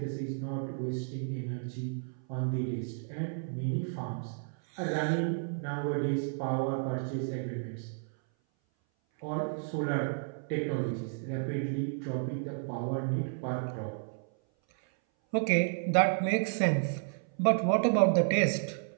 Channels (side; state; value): left; silent; 56 dB below the other